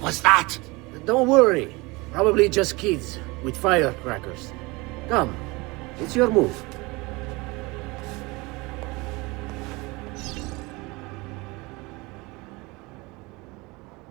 was that? Don't worry. Probably just kids with firecrackers. Come, it's your move.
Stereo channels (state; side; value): quieter; left; 24.4 dB